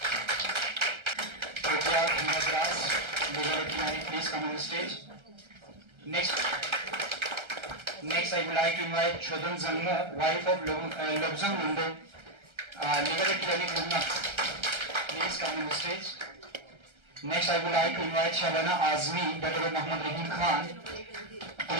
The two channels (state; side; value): late; left; 1.3 ms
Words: Tokya Dras, Legal Clinic, please come on the stage. Next, I would like to invite Chodhan Zangmo, wife of Lobzang Mundo, Legal Clinic Lumna, please come on the stage. Next, I would like to invite Shabana Azmi, daughter of Muhammad Rahim Khan,